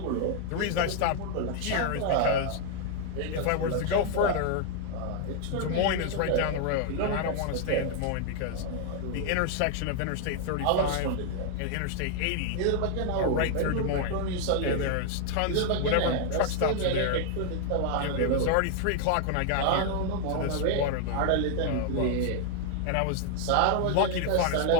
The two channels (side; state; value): both; different; correlation 0.00